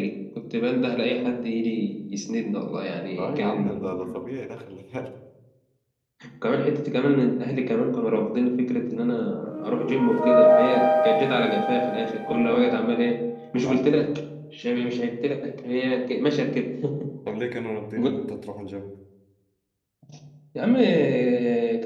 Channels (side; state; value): both; identical; correlation 1.00